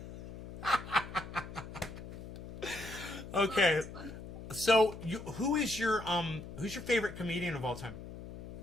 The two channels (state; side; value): noise; left; hum, 11 dB below the sound